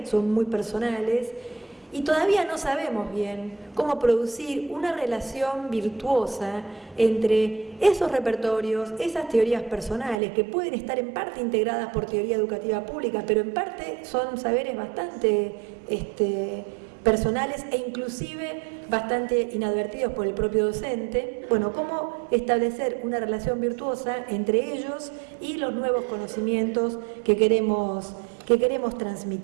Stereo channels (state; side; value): drops out; left; at 10.2 s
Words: son muy personales, y todavía no sabemos bien cómo producir una relación virtuosa entre esos repertorios, esas teorías personales que pueden estar en parte integradas por teoría educativa pública, pero en parte son saberes bastante personales e inclusive bastante inadvertidos por el propio docente. Bueno, cómo establecer una relación virtuosa entre ellos y los nuevos conocimientos que queremos